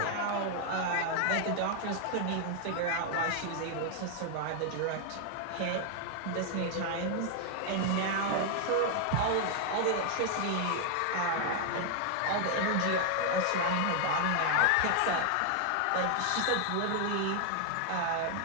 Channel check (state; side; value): different; both; correlation 0.00